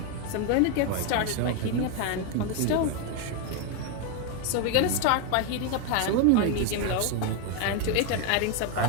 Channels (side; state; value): both; different; correlation 0.01